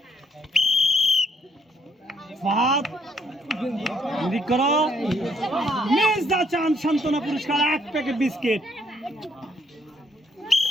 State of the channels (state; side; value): normal; both; correlation 0.70